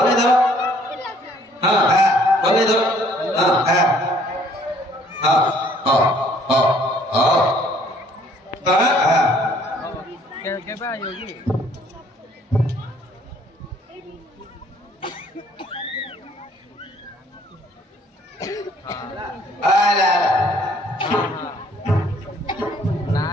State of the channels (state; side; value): normal; both; correlation 0.61